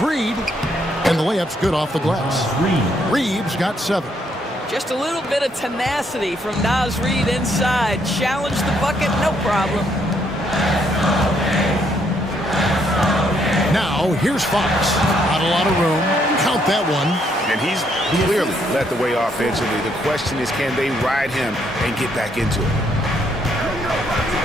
And the layup's good off the glass. Reeves got 7. Just a little bit of tenacity from Naz Reid inside. Challenge the bucket, no problem. Now, here's Fox. Not a lot of room. Count that one. And he's clearly led the way offensively. The question is, can they ride him and get back into it?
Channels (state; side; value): normal; both; correlation 0.72